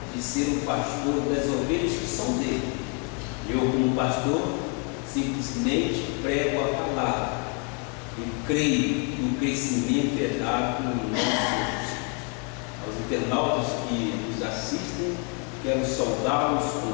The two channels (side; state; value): right; quieter; 37.2 dB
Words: de ser o pastor das ovelhas que são dele. Eu, como pastor, simplesmente prego a palavra e creio no crescimento dado no nome de Jesus. Aos internautas que nos assistem, quero saudá-los